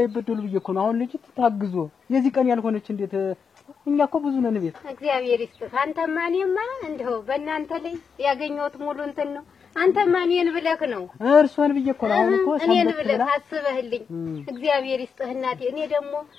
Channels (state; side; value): quieter; right; 6.1 dB